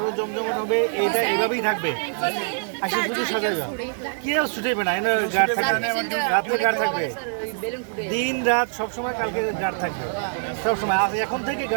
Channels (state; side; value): silent; left; 63 dB below the other